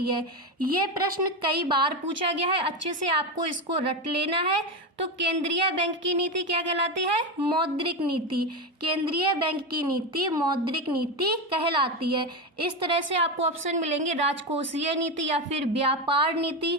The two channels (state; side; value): normal; both; correlation 0.15